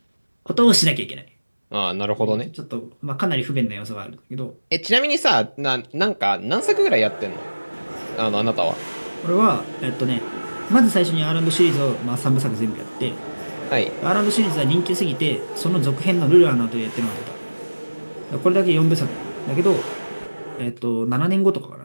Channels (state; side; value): inverted; both; correlation -1.00